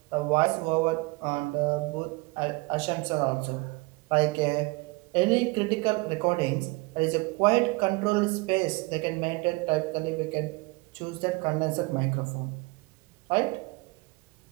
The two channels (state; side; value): quieter; left; 25.7 dB